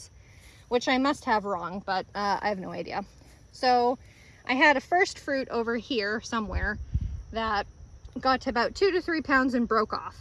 which I must have wrong, but I have no idea. So I had a first fruit over here somewhere that got to about 2 to 3 pounds and broke off.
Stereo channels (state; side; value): identical; both; correlation 1.00